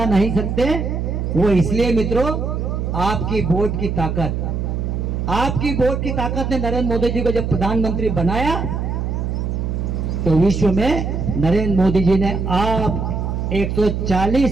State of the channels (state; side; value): noise; right; hum, 2 dB below the sound